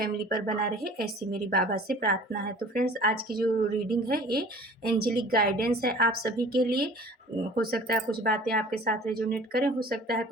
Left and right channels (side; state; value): both; normal; correlation 0.46